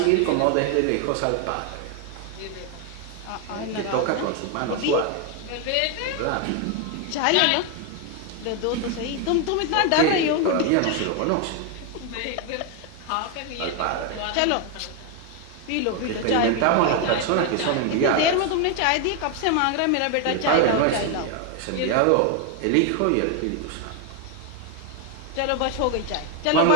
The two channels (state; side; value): different; both; correlation 0.01